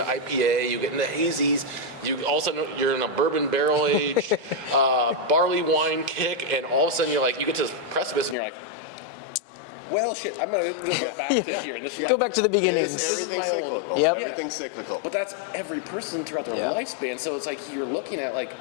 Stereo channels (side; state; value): right; drops out; at 8.3 s